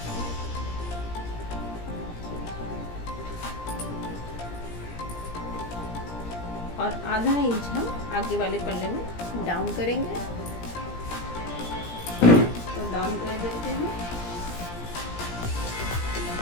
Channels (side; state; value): right; late; 17 ms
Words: और आधा इंच हम आगे वाले पल्ले में डाउन करेंगे। तो डाउन कर देते हैं।